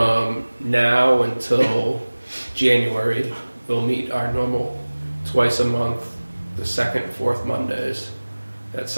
now until January, we'll meet our normal twice a month, the second and fourth Mondays at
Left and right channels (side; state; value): both; inverted; correlation -1.00